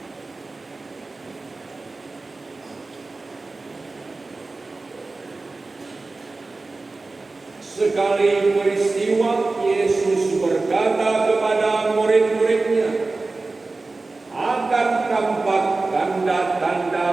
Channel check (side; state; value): left; quieter; 3.5 dB